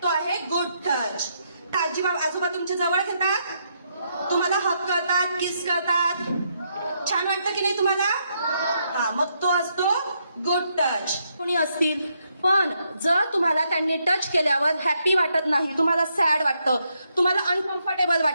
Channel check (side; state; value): both; inverted; correlation -0.78